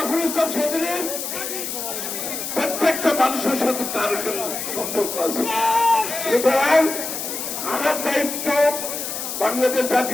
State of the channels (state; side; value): noise; left; hiss, 5 dB below the sound